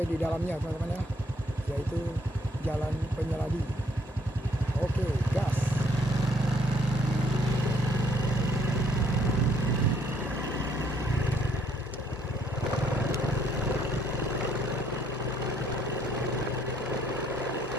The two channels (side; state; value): both; normal; correlation 0.66